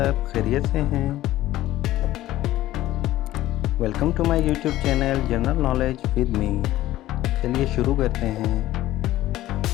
खैरियत से हैं? Welcome to my YouTube channel general knowledge with me. चलिए शुरू करते हैं।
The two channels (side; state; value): right; quieter; 15.1 dB